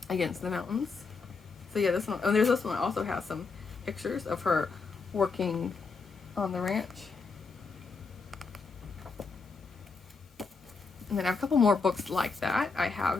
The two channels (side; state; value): right; quieter; 4.5 dB